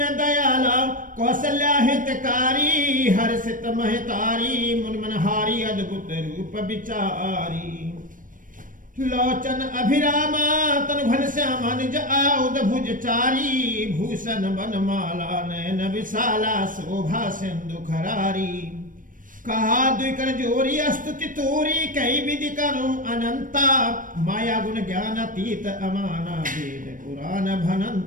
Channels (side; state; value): left; late; 0.39 ms